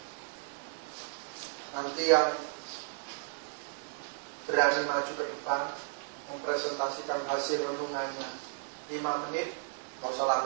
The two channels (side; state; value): left; silent; digital silence